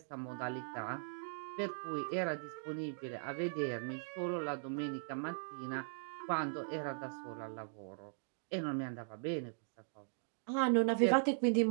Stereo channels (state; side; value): silent; left; digital silence